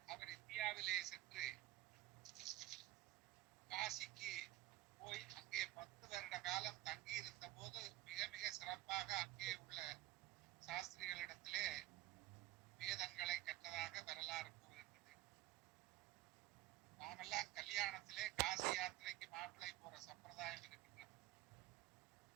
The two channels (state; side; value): quieter; left; 16.2 dB